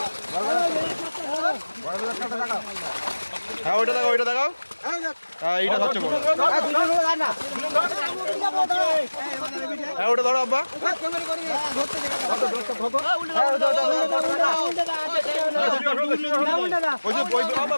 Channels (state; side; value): inverted; both; correlation -1.00